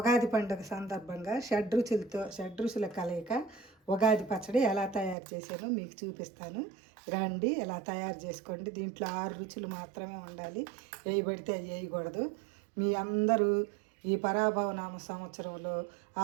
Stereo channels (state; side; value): drops out; left; at 5.2 s